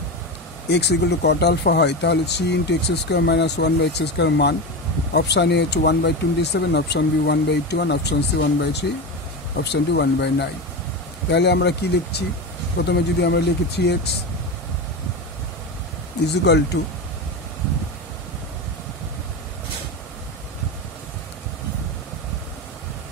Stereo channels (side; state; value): both; normal; correlation 0.20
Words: equal to cot alpha হয়, তাহলে 3 × x² - 1/x² মান অপশান এ হচ্ছে 1/27, option B 1/21, option C 1/3, option D 1/9। তাহলে আমরা কি লিখছি? প্রথমে যদি আমরা লিখি 3x is equal to